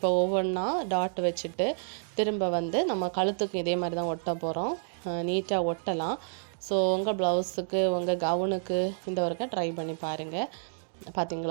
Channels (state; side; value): silent; left; digital silence